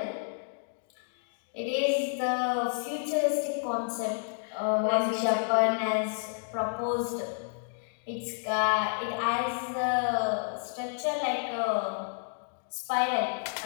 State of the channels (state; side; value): silent; right; digital silence